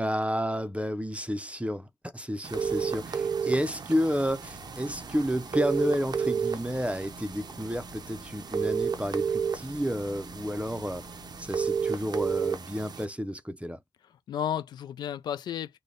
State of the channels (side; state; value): both; normal; correlation 0.85